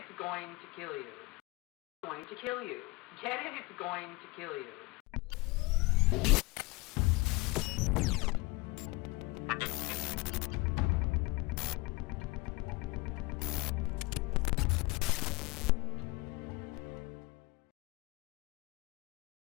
going to kill you. It's going to kill you. Get it? It's going to kill you.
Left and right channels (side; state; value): right; quieter; 24.0 dB